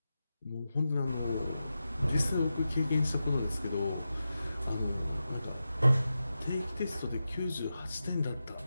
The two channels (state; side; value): inverted; both; correlation -0.91